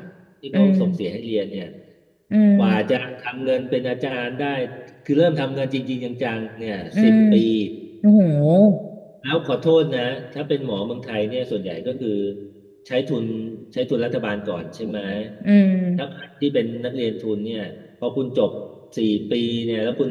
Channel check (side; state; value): both; identical; correlation 1.00